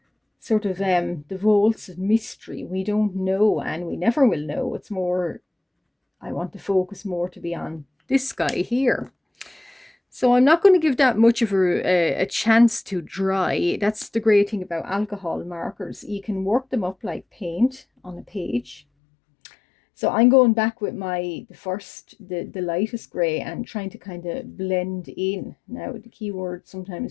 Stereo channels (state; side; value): drops out; right; at 18.8 s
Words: sort of the vaults of mystery. We don't know, and we never will know. It's more, I want the focus more to be on this guy here. So I'm not going to give that much of a chance to dry. That's the great thing about alcohol markers. You can work them up like paint on a page. So I'm going back with the lightest grey and trying to kind of blend in. Now the key word